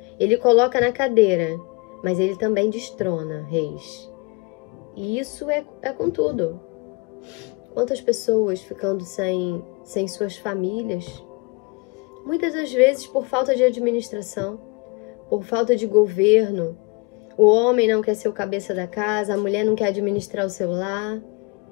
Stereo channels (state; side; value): quieter; right; 28.4 dB